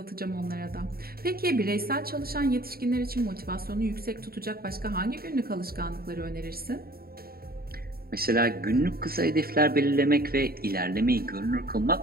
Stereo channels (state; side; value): late; left; 0.44 ms